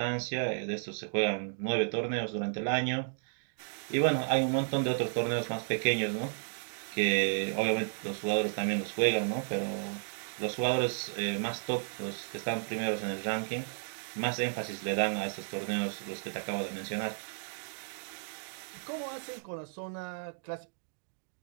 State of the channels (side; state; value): left; silent; digital silence